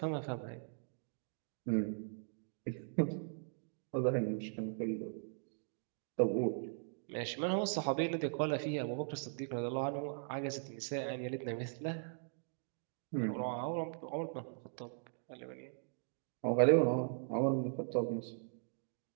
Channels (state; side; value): silent; left; digital silence